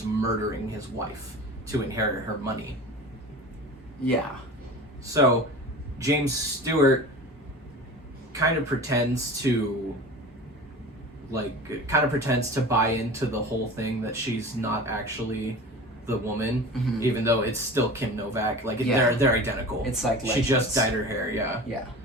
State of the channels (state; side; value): normal; both; correlation 0.35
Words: murdering his wife to inherit her money. Yeah. So James Stewart kind of pretends to buy into the whole thing that she's not actually the woman, even though it's still Kim Novak. They're identical. It's like she just dyed her hair. Yeah. Yeah.